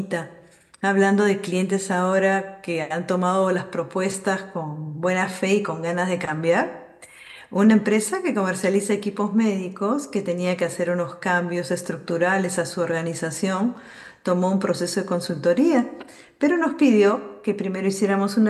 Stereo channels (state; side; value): identical; both; correlation 1.00